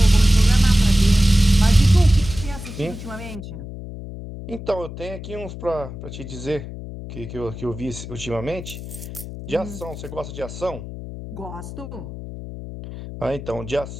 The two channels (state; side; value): noise; left; hum, 11 dB below the sound